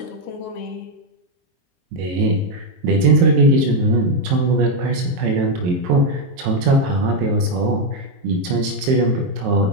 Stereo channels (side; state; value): left; late; 23 ms